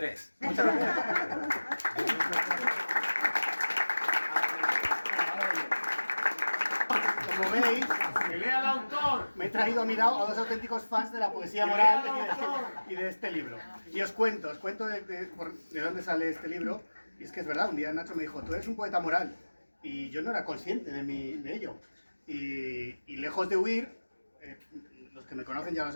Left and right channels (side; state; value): both; inverted; correlation -1.00